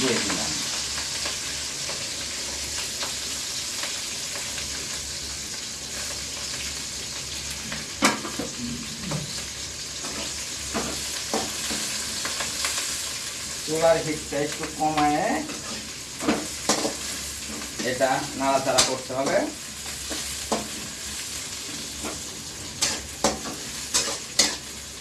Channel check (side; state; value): both; identical; correlation 1.00